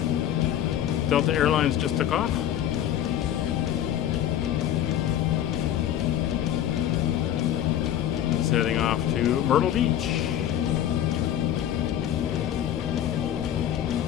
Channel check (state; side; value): quieter; right; 11.0 dB